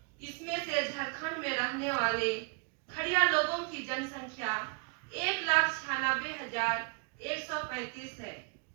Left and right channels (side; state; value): left; quieter; 35.0 dB